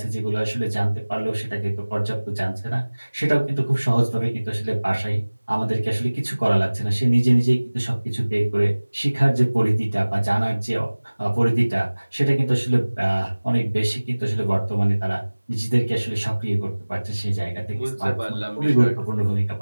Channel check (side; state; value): both; inverted; correlation -1.00